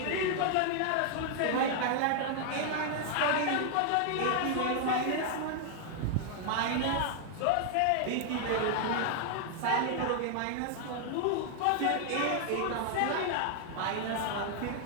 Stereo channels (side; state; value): both; different; correlation 0.00